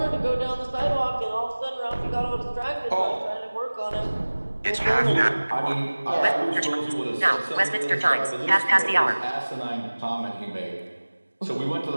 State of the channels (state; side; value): inverted; both; correlation -1.00